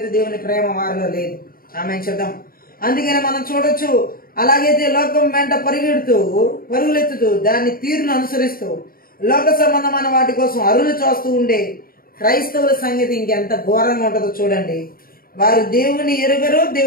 దేవుని ప్రేమ వారిలో లేదు. ఆమె చెప్దాం. అందుకని మనం చూడొచ్చు, అలాగైతే లోకం వెంట పరుగులెత్తుతూ దాన్ని తీరును అనుసరిస్తూ లోక సంబంధమైన వాటి కోసం అరులు చూస్తూ ఉండే క్రైస్తవుల సంగతి ఇంకెంత ఘోరంగా ఉంటుందో చూడండి. వారు దేవుని ఎరుగరు,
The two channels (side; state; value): right; late; 0.42 ms